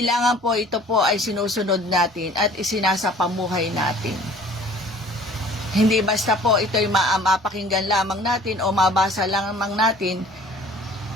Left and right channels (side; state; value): both; normal; correlation 0.50